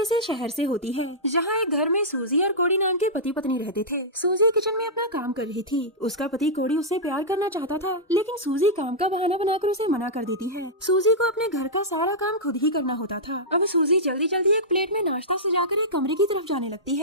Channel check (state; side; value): normal; both; correlation -0.11